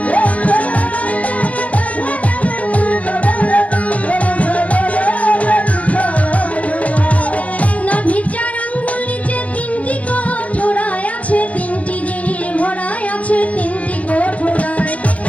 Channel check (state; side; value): late; right; 0.067 ms